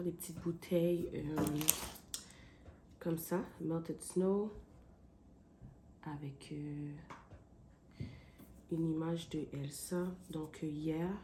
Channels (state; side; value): identical; both; correlation 1.00